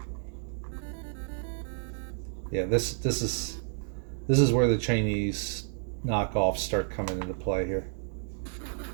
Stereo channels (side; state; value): left; silent; 57 dB below the other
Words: Yeah, this is where the Chinese knockoffs start coming into play here.